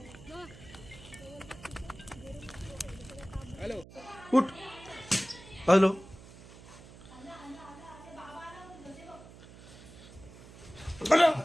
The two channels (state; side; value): noise; right; hum, 18 dB below the sound